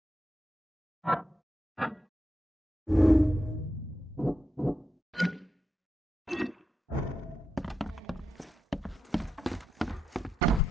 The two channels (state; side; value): normal; both; correlation 0.86